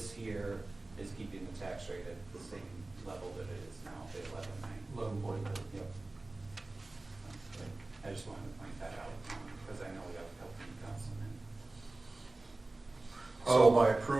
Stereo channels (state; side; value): quieter; left; 3.0 dB